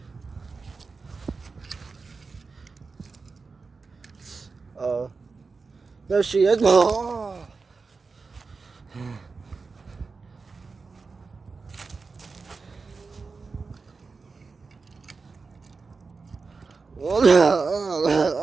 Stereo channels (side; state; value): left; quieter; 4.4 dB